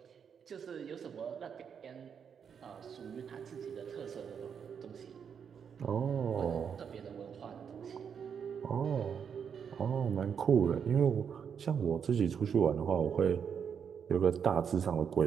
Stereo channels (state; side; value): quieter; left; 7.2 dB